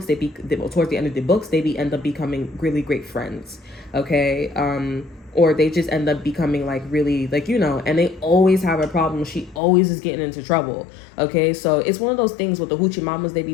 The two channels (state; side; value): drops out; right; at 9.6 s